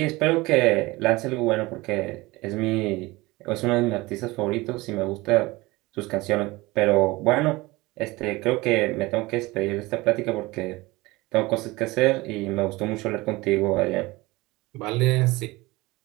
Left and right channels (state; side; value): quieter; left; 21.4 dB